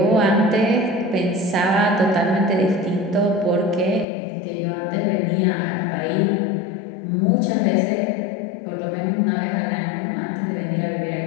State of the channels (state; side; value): drops out; right; at 4.0 s